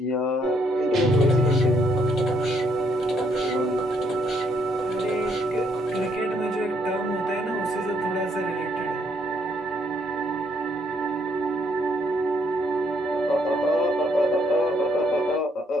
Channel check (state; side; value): normal; both; correlation 0.71